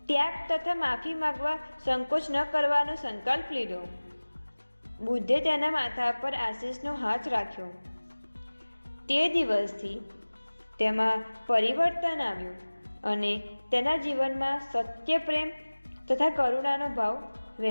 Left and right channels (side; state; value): both; inverted; correlation -1.00